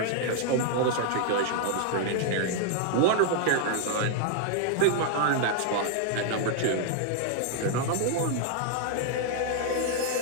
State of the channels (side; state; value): both; different; correlation 0.00